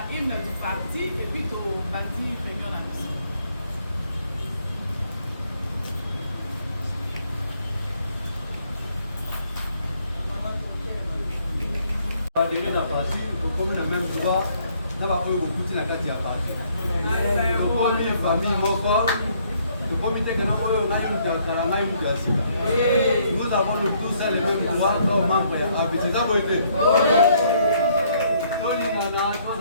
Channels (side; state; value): both; inverted; correlation -0.67